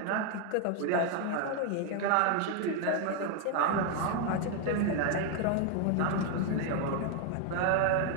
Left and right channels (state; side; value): different; both; correlation 0.01